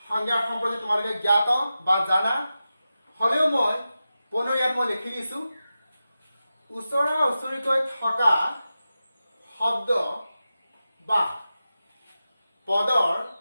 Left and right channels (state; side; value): inverted; both; correlation -0.92